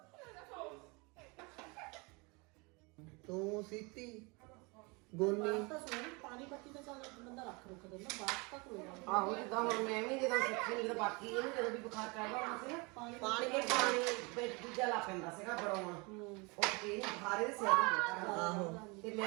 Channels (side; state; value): left; quieter; 28.3 dB